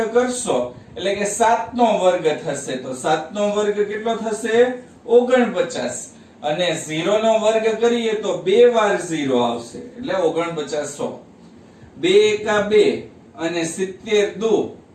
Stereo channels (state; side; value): identical; both; correlation 1.00